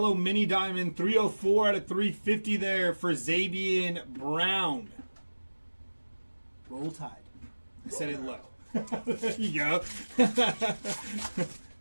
mini diamond, 304 out of 350 there for Zabian Brown. Roll Tide. I said it low. There you go.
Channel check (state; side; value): inverted; both; correlation -1.00